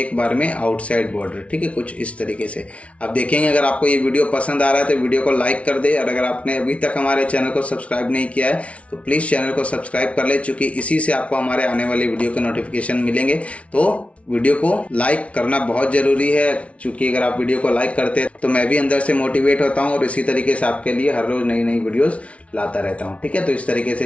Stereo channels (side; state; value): right; late; 0.063 ms